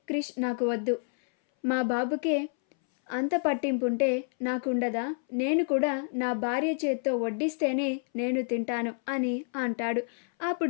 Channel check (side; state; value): right; silent; 59 dB below the other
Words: క్రిష్ నాకు వద్దు, మా బాబుకే అంత పట్టింపుంటే నాకుండదా, నేను కూడా నా భార్య చేత్తో వడ్డిస్తేనే నేను తింటాను అని అంటాడు.